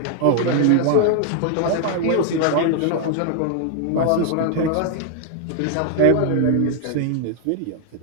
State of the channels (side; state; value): both; different; correlation 0.00